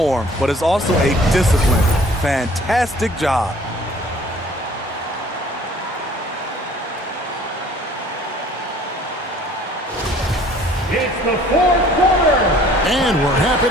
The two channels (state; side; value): normal; both; correlation 0.53